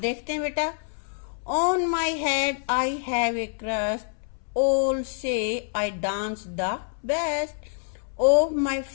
हैं बेटा। On my head I have a crust, all say I dance the best. Of my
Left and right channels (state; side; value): silent; right; 61 dB below the other